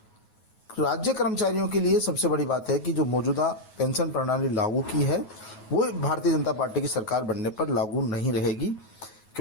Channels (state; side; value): late; right; 9.4 ms